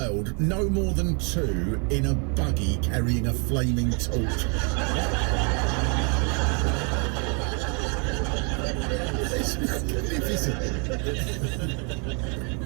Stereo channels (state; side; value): quieter; left; 36.1 dB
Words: no more than 2 in a buggy carrying a flaming torch. It's magnificent.